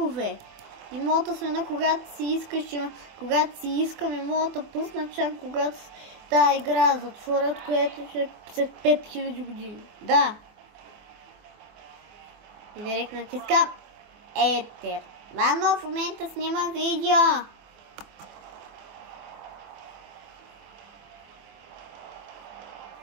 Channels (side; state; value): left; late; 24 ms